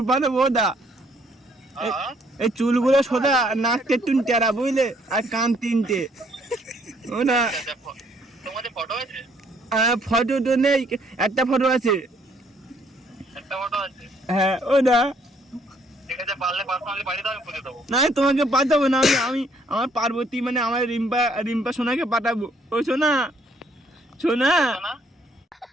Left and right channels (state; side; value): normal; both; correlation 0.66